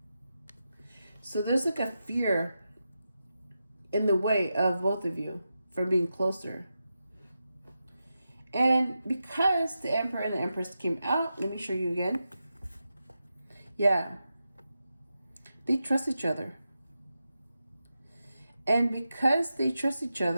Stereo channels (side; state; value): both; inverted; correlation -0.89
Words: So there's like a fear in the way of both of you from being closer. And because the Emperor and the Empress came out, let me show you again. Yeah. They trust each other. And because they trust each